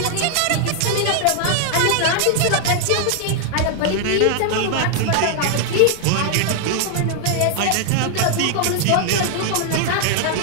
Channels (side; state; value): both; different; correlation 0.00